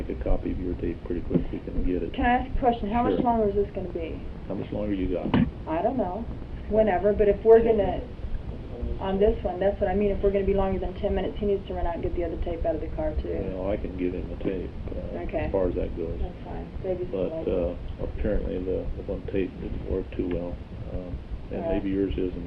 a copy of your tape pretty quick, we can get it. Can I ask a question? How much longer is this going to be? How much longer you got? I don't know. Whenever, but if we're going to, on this one, that's what I mean. If we're going to be longer than 10 minutes, he needs to run out and get the other tape out of the car, too. Well, I can give him the tape as far as that goes. That's fine. But apparently the one tape didn't work too well. And maybe yours is and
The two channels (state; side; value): identical; both; correlation 1.00